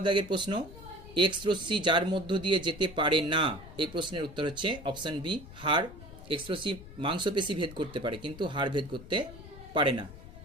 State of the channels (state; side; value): noise; left; rumble, 16 dB below the sound